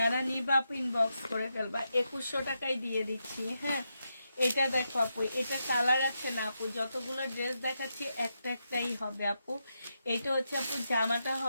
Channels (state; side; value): inverted; both; correlation -0.85